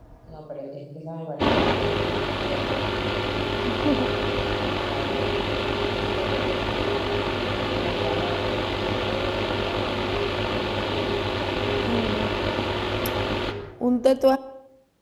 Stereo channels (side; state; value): both; identical; correlation 1.00